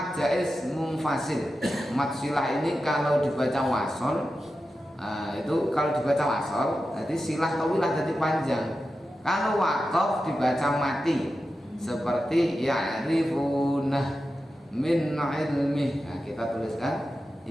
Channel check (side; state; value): both; normal; correlation 0.91